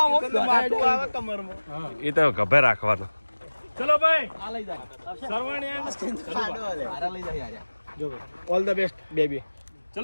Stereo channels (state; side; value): inverted; both; correlation -1.00